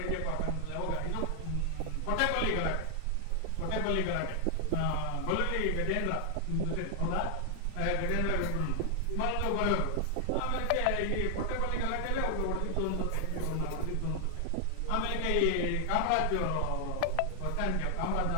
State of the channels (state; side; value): different; both; correlation 0.00